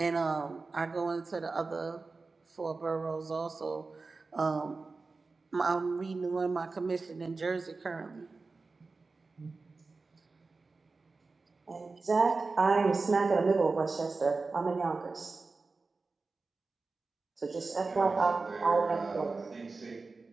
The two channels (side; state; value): left; quieter; 3.9 dB